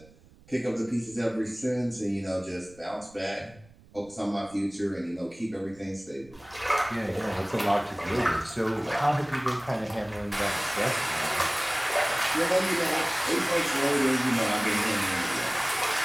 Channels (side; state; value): right; noise; rumble, 25 dB below the sound